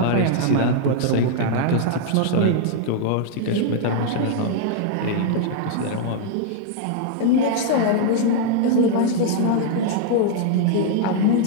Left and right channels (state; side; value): different; both; correlation -0.01